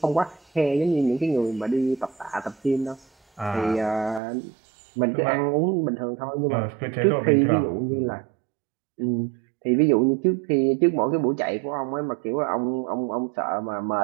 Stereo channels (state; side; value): drops out; left; at 4.2 s